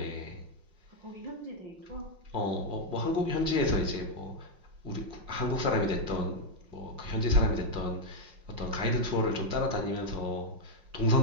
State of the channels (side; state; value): left; late; 5.6 ms